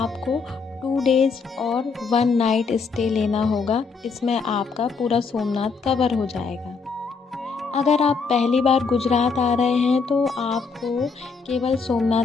2 डेज़ और 1 नाइट स्टे लेना होगा। इसमें आपका पूरा सोमनाथ कवर हो जाएगा। अगर आप पहली बार गुजरात आ रहे हैं तो आपको केवल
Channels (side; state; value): right; quieter; 5.0 dB